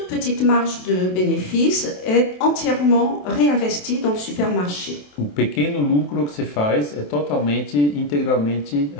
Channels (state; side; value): late; right; 27 ms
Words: petite marge de bénéfice est entièrement réinvestie dans le supermarché. O pequeno lucro que se faz é integralmente